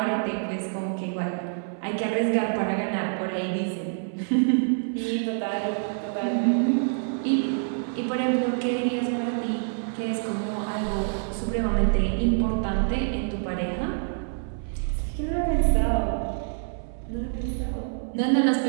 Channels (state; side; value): silent; left; 61 dB below the other